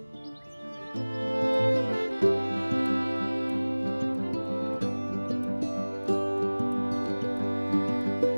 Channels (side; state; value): both; inverted; correlation -1.00